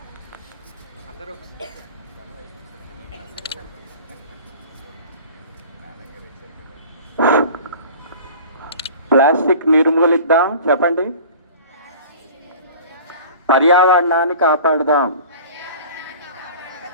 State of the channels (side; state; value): both; inverted; correlation -0.43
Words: ప్లాస్టిక్ నిర్మూలిద్దాం. చెప్పండి. పర్యావరణాన్ని కాపాడుదాం.